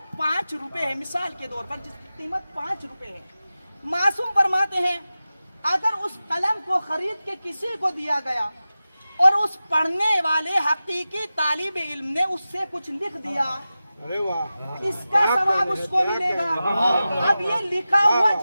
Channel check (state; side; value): inverted; both; correlation -0.94